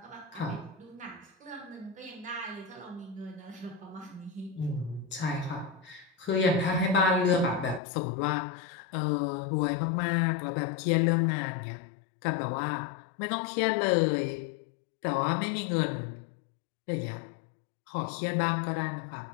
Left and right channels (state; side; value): drops out; right; at 7.8 s